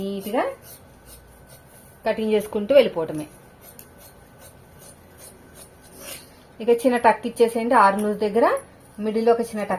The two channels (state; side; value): identical; both; correlation 1.00